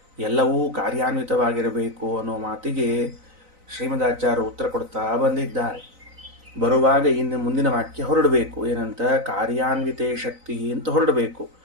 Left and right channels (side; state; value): left; late; 3.9 ms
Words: ಎಲ್ಲವೂ ಕಾರ್ಯಾನ್ವಿತವಾಗಿರಬೇಕು ಅನ್ನೋ ಮಾತಿಗೆ ಶ್ರೀಮದಾಚಾರ್ಯರು ಉತ್ತರ ಕೊಡ್ತಾ ಬಂದಿದ್ದಾರೆ. ಬರುವಾಗ ಇನ್ನು ಮುಂದಿನ ವಾಕ್ಯ ಹೊರಡಬೇಕು. ಏನಂತ? ಕಾರ್ಯಾನ್ವಿತೇ ಶಕ್ತಿ ಅಂತ ಹೊರಡಬೇಕು.